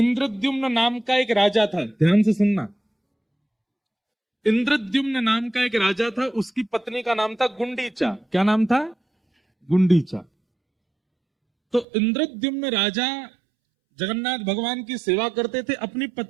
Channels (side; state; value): left; drops out; at 11.9 s